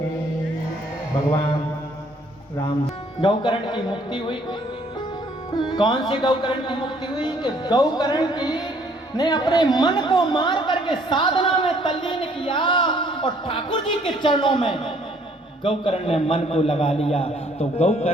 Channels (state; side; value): normal; both; correlation 0.62